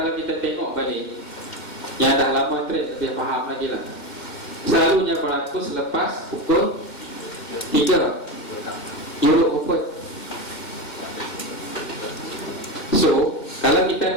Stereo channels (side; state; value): right; late; 2.1 ms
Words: kita tengok balik, yang dah lama trade lebih faham lagi lah, selalunya berlaku selepas pukul 3 Euro Open. So kalau